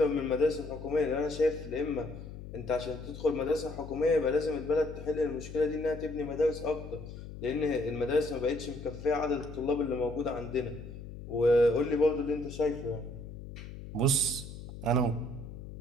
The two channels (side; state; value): left; noise; hum, 12 dB below the sound